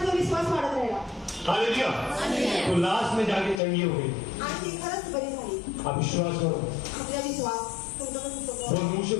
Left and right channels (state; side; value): drops out; right; at 3.6 s